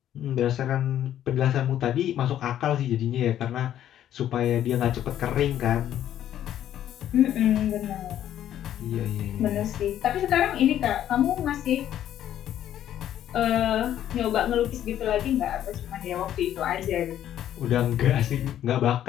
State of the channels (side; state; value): right; quieter; 11.2 dB